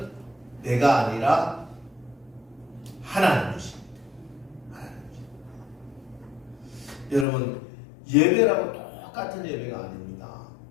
내가 아니라 하나님이십니다. 여러분, 예배라고 똑같은 예배가 아닙니다.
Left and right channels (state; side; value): drops out; right; at 7.2 s